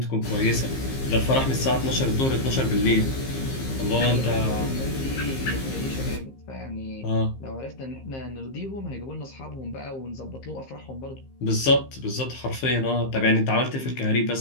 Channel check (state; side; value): late; right; 15 ms